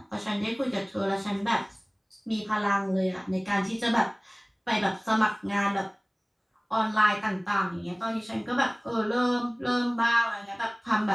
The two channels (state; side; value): identical; both; correlation 1.00